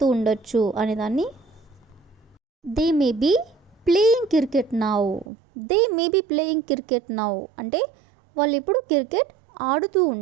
ఉండొచ్చు అనేదాన్ని they may be playing cricket now. They may be playing cricket now అంటే వాళ్ళు ఇప్పుడు క్రికెట్ ఆడుతూ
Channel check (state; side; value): drops out; left; at 5.2 s